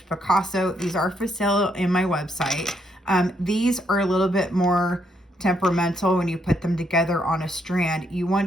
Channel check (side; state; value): both; normal; correlation 0.75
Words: Picasso. These are for sale in my website. These are a little bit more temperamental when you put them together on a strand. You